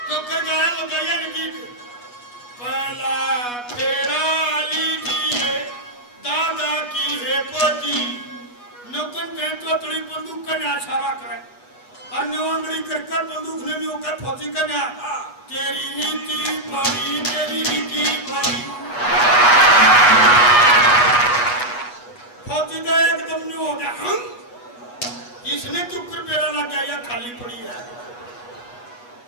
तो कर गाया लुगाइया ने गीत, पहला फेरा लीजिए दादा की है पोती, नौकन के तोतड़ी बंदूक का इशारा करे, और नौंगड़ी कर बंदूक ने भी होकर फौजी का ना, तेरी नीति बड़ी, तेरी नीति बड़ी, फौजी का एकदम नहीं हो गया, हम इसने चुप कर पेड़ा लग गया, खाली पड़ी है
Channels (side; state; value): right; late; 8.2 ms